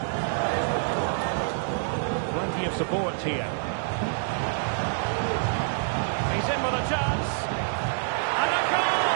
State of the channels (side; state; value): left; silent; digital silence